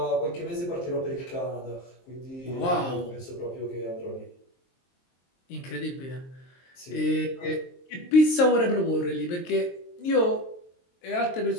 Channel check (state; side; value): late; right; 23 ms